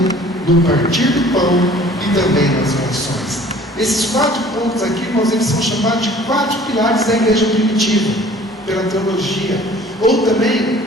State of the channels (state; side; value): normal; both; correlation 0.50